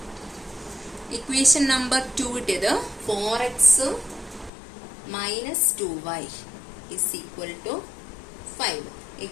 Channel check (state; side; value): drops out; right; at 4.5 s